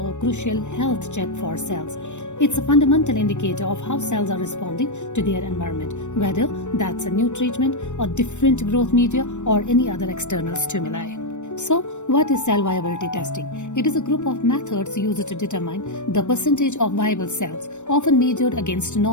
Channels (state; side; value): late; right; 0.84 ms